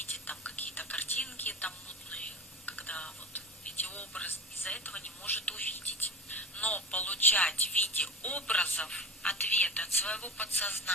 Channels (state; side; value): normal; both; correlation 0.31